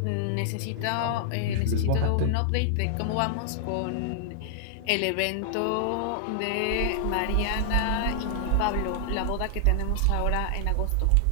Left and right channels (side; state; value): both; different; correlation -0.01